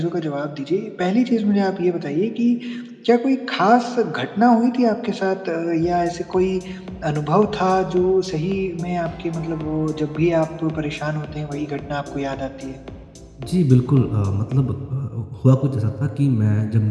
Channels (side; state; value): both; identical; correlation 1.00